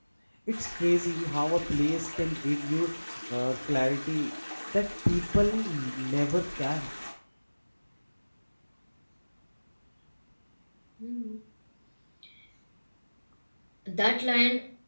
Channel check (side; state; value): both; inverted; correlation -1.00